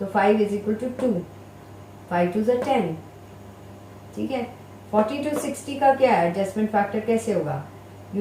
5 इज इक्वल टू 2, 5 2 is 10। ठीक है, 40 to 60 का क्या है, एडजस्टमेंट फैक्टर कैसे होगा,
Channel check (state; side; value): identical; both; correlation 1.00